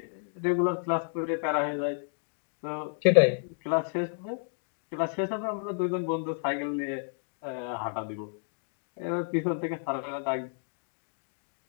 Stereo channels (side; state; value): right; silent; digital silence